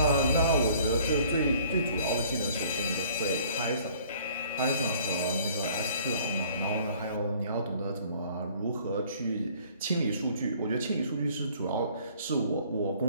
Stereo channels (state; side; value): inverted; both; correlation -0.56